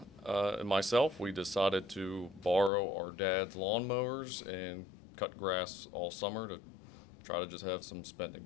and myself, we decided to borrow our dad's lawnmowers and cut grass all summer to try to just have some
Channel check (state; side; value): drops out; right; at 2.7 s